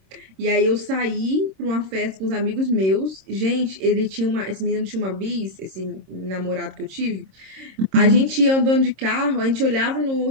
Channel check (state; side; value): late; left; 26 ms